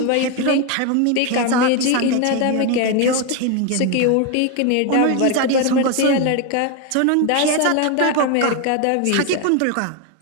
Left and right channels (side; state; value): both; different; correlation 0.01